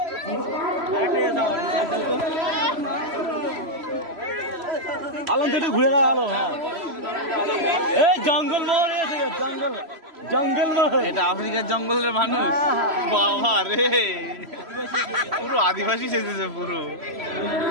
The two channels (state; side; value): late; left; 3.0 ms